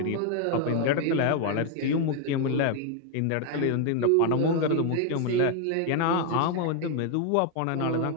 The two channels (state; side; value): different; both; correlation 0.00